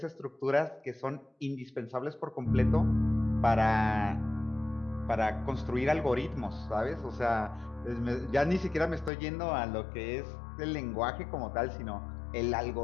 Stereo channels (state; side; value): drops out; right; at 9.1 s